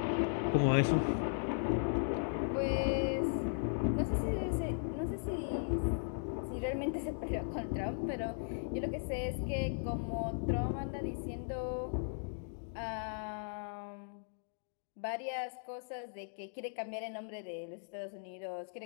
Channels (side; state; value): right; silent; digital silence